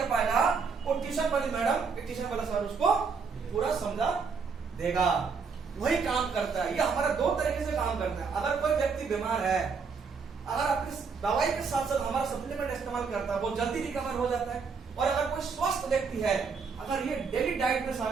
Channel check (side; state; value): left; quieter; 5.3 dB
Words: पाएगा, वो ट्यूशन वाली मैडम, ट्यूशन वाला सर उसको पूरा समझा देगा। वही काम करता है। ये हमारा दो तरीके से काम करता है। अगर कोई व्यक्ति बीमार है, अगर अपनी दवाई के साथ साथ हमारा सप्लीमेंट इस्तेमाल करता है, वो जल्दी रिकवर हो जाता है। और अगर कोई स्वस्थ व्यक्ति है, अगर ये डेली डाइट में